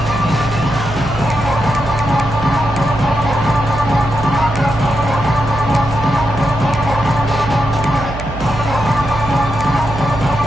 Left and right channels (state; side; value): noise; right; hum, 9 dB below the sound